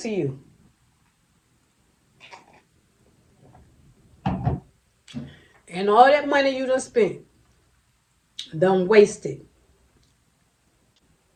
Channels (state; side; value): identical; both; correlation 1.00